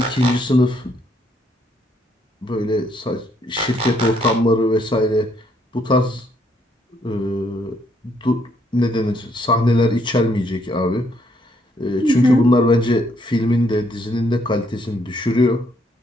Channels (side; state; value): both; normal; correlation 0.70